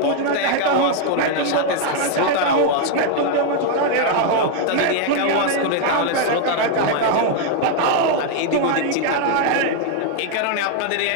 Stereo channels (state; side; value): different; both; correlation 0.00